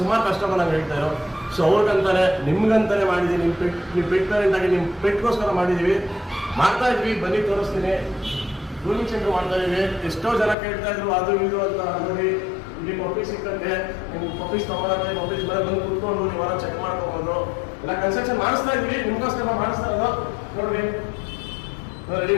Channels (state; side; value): drops out; right; at 10.6 s